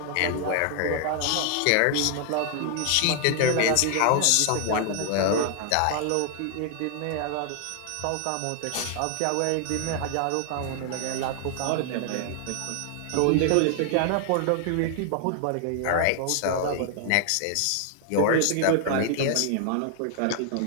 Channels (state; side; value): different; both; correlation 0.00